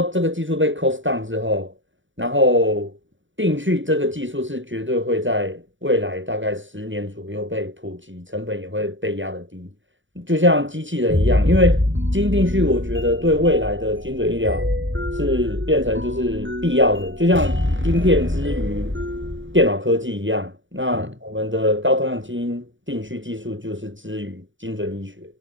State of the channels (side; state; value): left; late; 0.56 ms